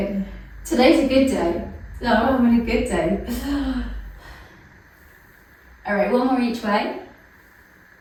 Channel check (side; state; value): both; identical; correlation 1.00